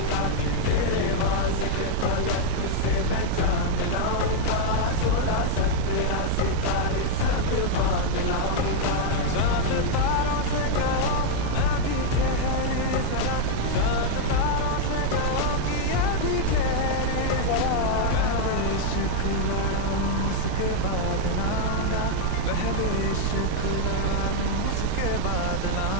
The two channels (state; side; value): different; both; correlation 0.00